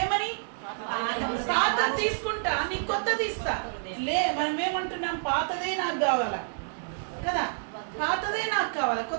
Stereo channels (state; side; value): silent; left; digital silence